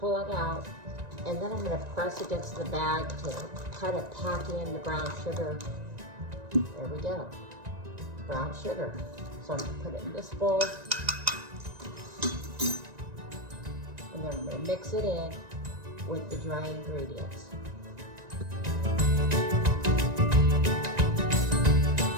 it out, and then I'm going to press against the bag to kind of pack in the brown sugar. There we go, brown sugar. So I'm going to put it in this bowl, and then I'm going to mix it in with the dry ingredients.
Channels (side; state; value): left; late; 1.9 ms